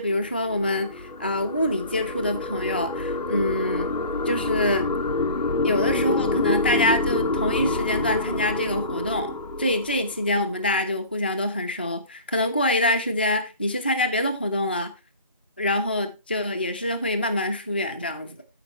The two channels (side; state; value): both; inverted; correlation -0.42